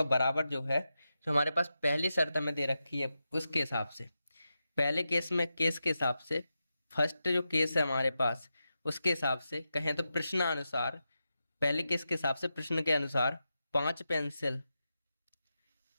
बराबर जो है, जो हमारे पास पहली शर्त हमें दे रखी है उसके हिसाब से, पहले केस के हिसाब से, फर्स्ट जो केस है हमारे पास उसके हिसाब से कहें तो प्रश्नानुसार, पहले केस के हिसाब से प्रश्न के अनुसार 5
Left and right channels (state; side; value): inverted; both; correlation -0.89